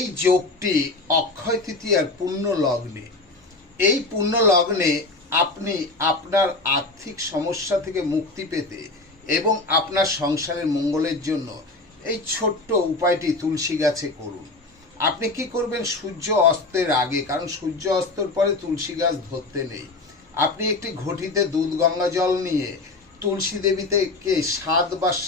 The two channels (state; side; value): quieter; right; 3.2 dB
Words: যোগটি অক্ষয় তৃতীয়ার পূর্ণ লগ্নে। এই পূর্ণ লগ্নে আপনি আপনার আর্থিক সমস্যা থেকে মুক্তি পেতে এবং আপনার সংসারের মঙ্গলের জন্য এই ছোট্ট উপায়টি তুলসী গাছে করুন। আপনি কি করবেন? সূর্য অস্তের আগে, কারণ সূর্য অস্তের পরে তুলসী গাছ ধরতে নেই, আপনি একটি ঘটিতে দুধ গঙ্গা জল নিয়ে তুলসী দেবীকে